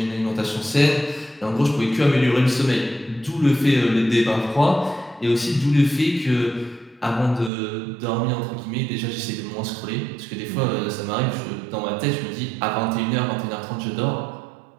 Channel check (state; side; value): drops out; left; at 7.5 s